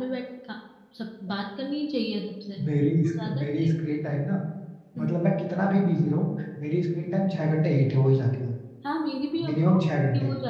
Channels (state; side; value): identical; both; correlation 1.00